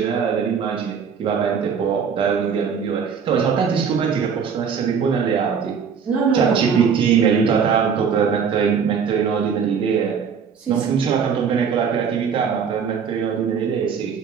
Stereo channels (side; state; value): left; quieter; 6.7 dB